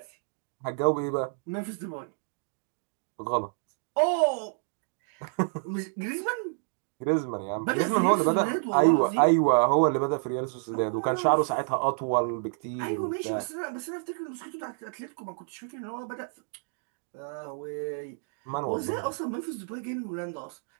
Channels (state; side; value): silent; left; digital silence